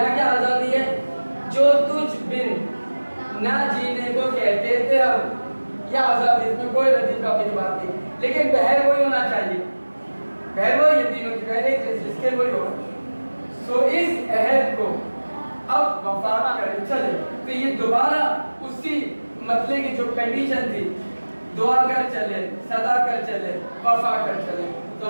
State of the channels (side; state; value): both; inverted; correlation -1.00